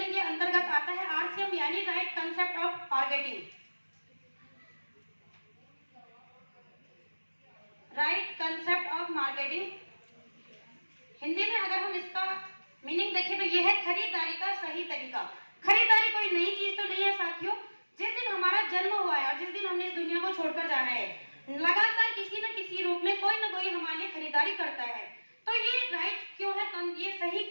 के अंतर्गत आता है आरसीएम, यानी right concept of marketing. Right concept of marketing Hindi में अगर हम इसका मीनिंग देखें तो यह है खरीदारी का सही तरीका। खरीदारी कोई नई चीज तो नहीं है साथियों। जिस दिन हमारा जन्म हुआ है और जिस दिन हमने इस दुनिया को छोड़कर जाना है, लगातार किसी न किसी रूप में कोई न कोई हमारे लिए खरीदारी करता है। तो ये राइट क्यों है, ये सही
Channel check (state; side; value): inverted; both; correlation -1.00